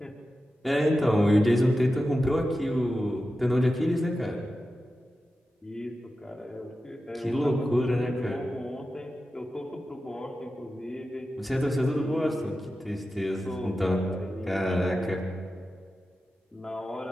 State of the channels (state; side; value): normal; both; correlation 0.92